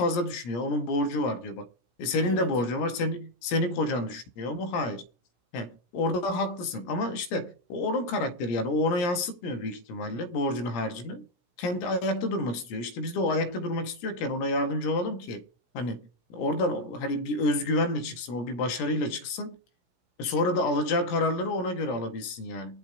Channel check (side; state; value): right; late; 16 ms